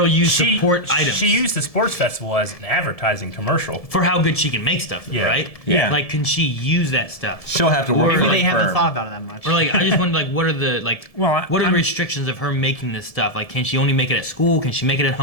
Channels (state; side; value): late; right; 1.7 ms